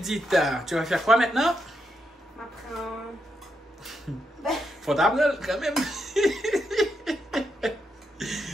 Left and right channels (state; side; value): normal; both; correlation 0.82